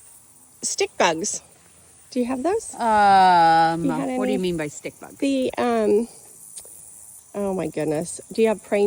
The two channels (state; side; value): identical; both; correlation 1.00